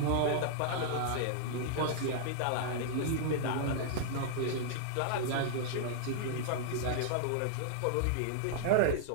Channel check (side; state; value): both; different; correlation -0.01